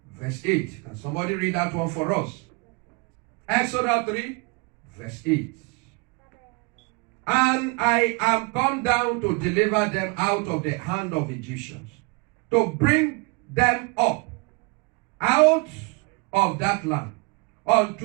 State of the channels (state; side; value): quieter; left; 30.2 dB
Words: verse 8. Can somebody read that one for us? Exodus 3, verse 8. And I am come down to deliver them out of the hand of Egyptians, to bring them up out of that land